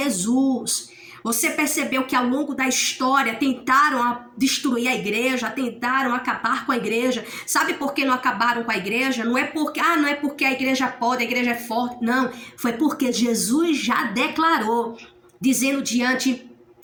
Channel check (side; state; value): both; identical; correlation 1.00